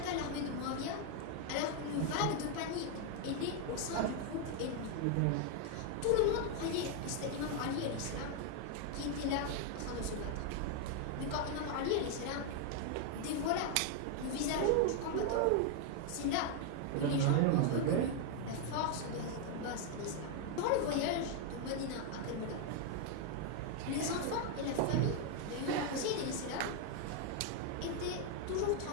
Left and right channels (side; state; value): both; different; correlation 0.00